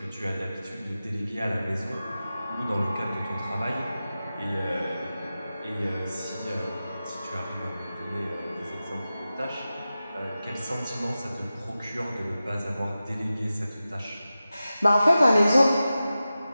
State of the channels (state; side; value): inverted; both; correlation -0.94